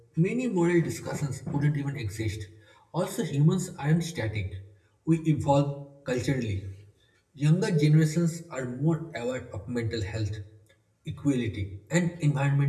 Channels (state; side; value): identical; both; correlation 1.00